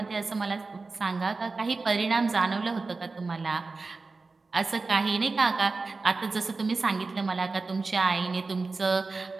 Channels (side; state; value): left; quieter; 3.9 dB